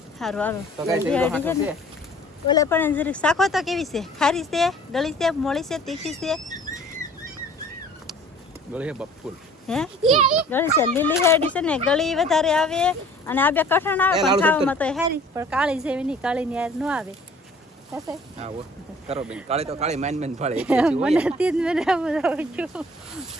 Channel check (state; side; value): normal; both; correlation 0.51